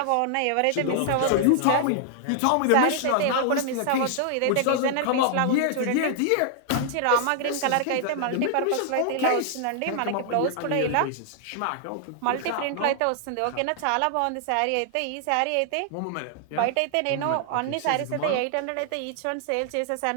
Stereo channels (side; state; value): both; different; correlation 0.00